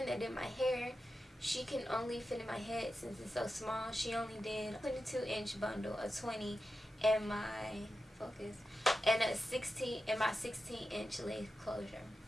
that did my hair, she can only fit in my head since it's so small. She only did a 22-inch bundle, a 20, and my focus, and a 16 and my 16-inch lace closure.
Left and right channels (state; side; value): normal; both; correlation 0.91